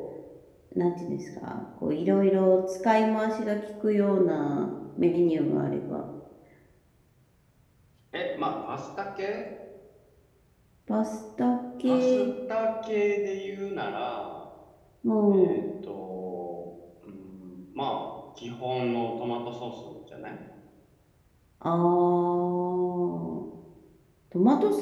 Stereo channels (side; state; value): both; identical; correlation 1.00